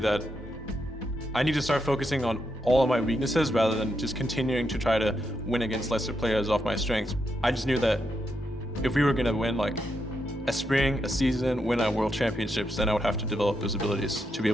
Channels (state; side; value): normal; both; correlation 0.82